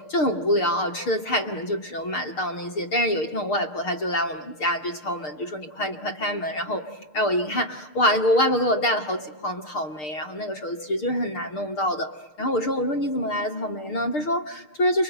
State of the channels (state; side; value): late; right; 6.6 ms